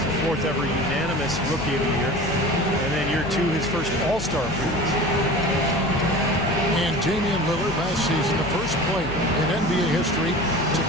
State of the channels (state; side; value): noise; left; hum, 10 dB below the sound